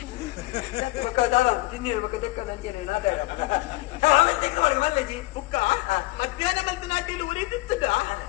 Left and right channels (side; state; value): right; quieter; 20.4 dB